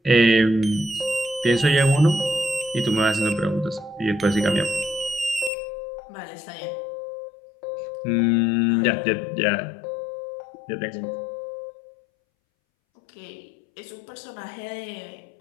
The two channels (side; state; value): right; drops out; at 5.5 s